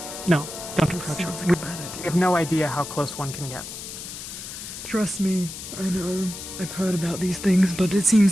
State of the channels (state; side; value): noise; left; hiss, 10 dB below the sound